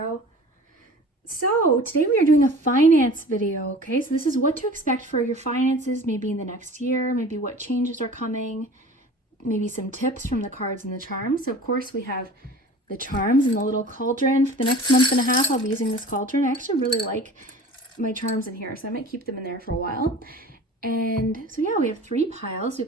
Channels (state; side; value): normal; both; correlation 0.42